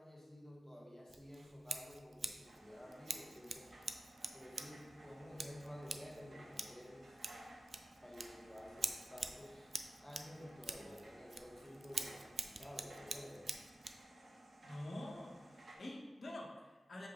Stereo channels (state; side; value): normal; both; correlation 0.93